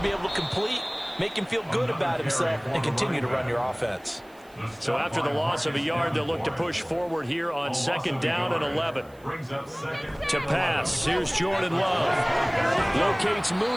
be able to complete, make him feel good about himself, and continue to run your offense. So after the loss of a yard, they'll look to push forward here on 2nd down and 11. To pass, here's Jordan Love. Locates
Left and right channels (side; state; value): right; noise; hiss, 29 dB below the sound